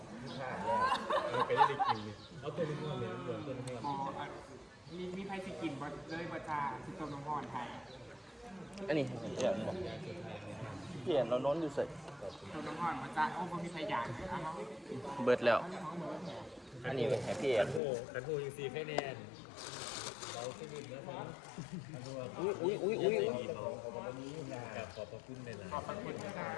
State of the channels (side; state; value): right; drops out; at 17.8 s